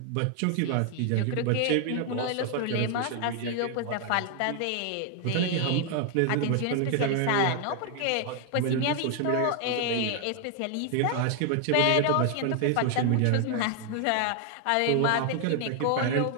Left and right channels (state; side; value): different; both; correlation 0.00